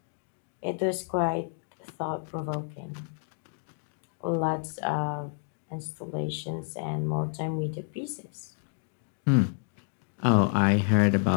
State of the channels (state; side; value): silent; right; 58 dB below the other